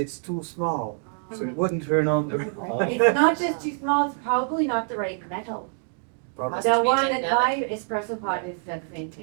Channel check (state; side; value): silent; left; 57 dB below the other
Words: too small, so it wouldn't turn on the. It's not just too small, it's probably not the right metal. Probably. Must The be one at genetic. my espresso pot is the same